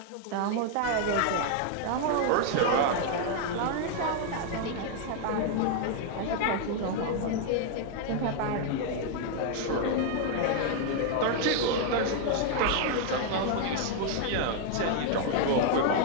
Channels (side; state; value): both; different; correlation 0.00